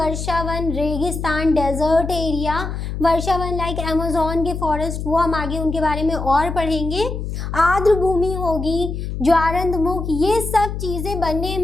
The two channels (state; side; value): noise; left; hum, 5 dB below the sound